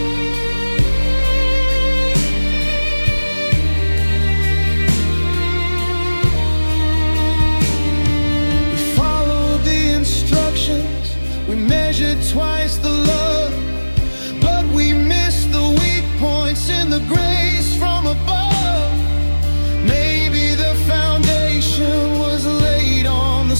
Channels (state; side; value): inverted; both; correlation -1.00